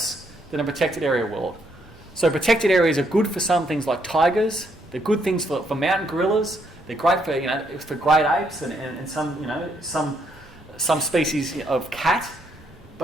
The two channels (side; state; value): both; normal; correlation 0.73